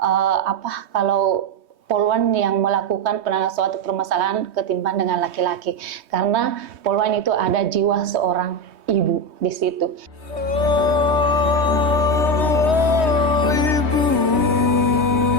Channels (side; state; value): left; late; 3.2 ms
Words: kalau Polwan yang melakukan penanganan suatu permasalahan ketimbang dengan laki-laki, karena Polwan itu ada jiwa seorang ibu di situ. Ibu,